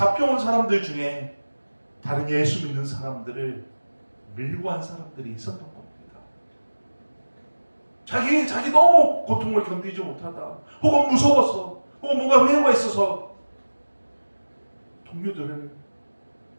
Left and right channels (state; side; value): inverted; both; correlation -1.00